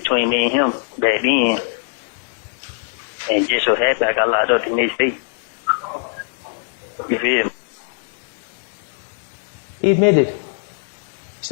me and him back then, and just so happened I got locked up the next day. You feel me? He admitted. He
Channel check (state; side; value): silent; right; digital silence